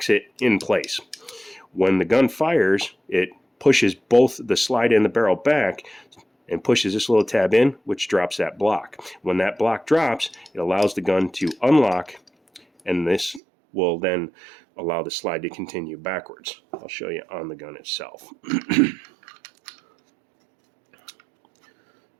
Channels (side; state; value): left; drops out; at 13.4 s